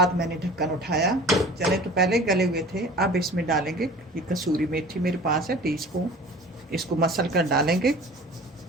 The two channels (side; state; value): both; normal; correlation 0.43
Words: मैंने ढक्कन उठाया। चने तो पहले गले हुए थे। अब इसमें डालेंगे, ये कसूरी मेथी मेरे पास है, टीस्पून, इसको मसल कर डालेंगे।